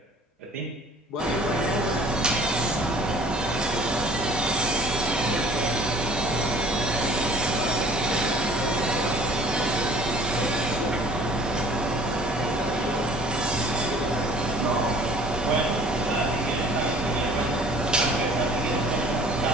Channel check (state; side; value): normal; both; correlation 0.51